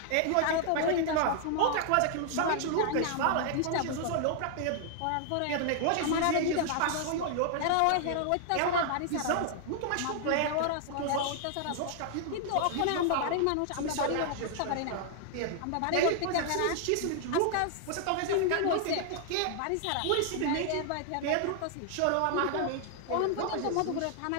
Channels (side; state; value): both; different; correlation 0.00